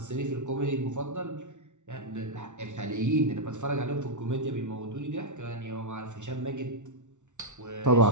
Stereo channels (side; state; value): left; late; 0.85 ms